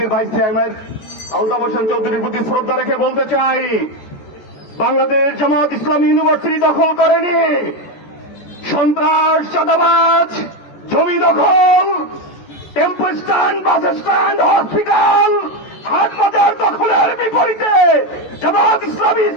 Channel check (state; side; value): late; right; 14 ms